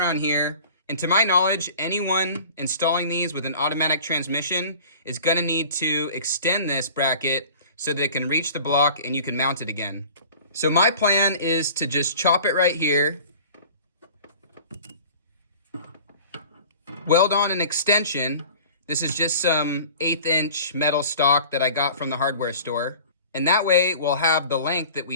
here And to my knowledge, anyone installing these with an automatic transmission is going to need to extend this bracket so that it can reach the block and you can mount it again. So my plan is to just chop it right here, weld on an extension. This is just some 1/8 inch metal stock that I got from the hardware store. And that way we'll have the length that we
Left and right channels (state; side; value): inverted; both; correlation -0.43